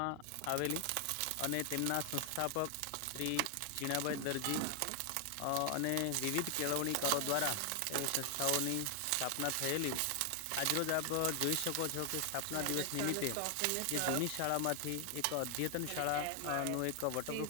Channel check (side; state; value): both; different; correlation 0.00